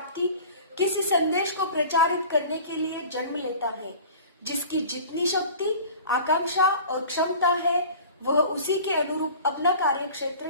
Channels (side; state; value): both; inverted; correlation -0.42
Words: किसी संदेश को प्रचारित करने के लिए जन्म लेता है। जिसकी जितनी शक्ति, आकांक्षा और क्षमता है, वह उसी के अनुरूप अपना कार्यक्षेत्र